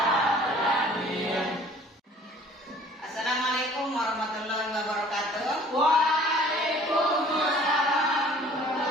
Assalamualaikum warahmatullahi wabarakatuh. Waalaikumsalam.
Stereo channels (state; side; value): normal; both; correlation 0.52